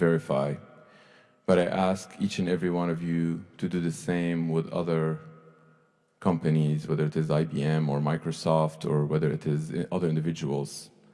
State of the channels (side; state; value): both; identical; correlation 1.00